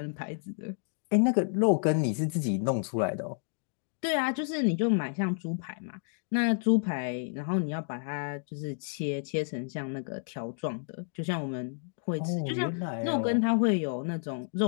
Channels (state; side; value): silent; right; digital silence